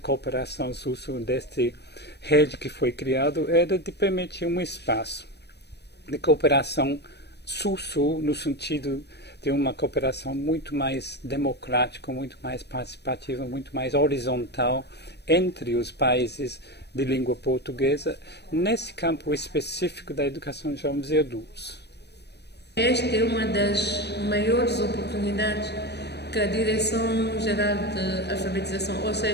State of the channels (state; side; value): late; right; 0.49 ms